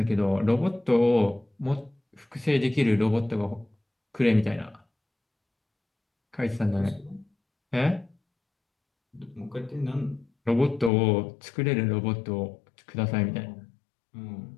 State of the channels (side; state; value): right; drops out; at 10.9 s